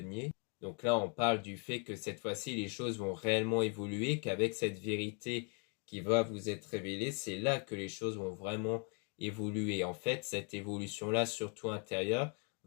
Donc là, on parle du fait que cette fois-ci, les choses vont réellement évoluer, qu'avec cette vérité qui va vous être révélée, c'est là que les choses vont vraiment évoluer. En fait, cette évolution-là, surtout intérieure,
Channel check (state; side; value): quieter; right; 38.5 dB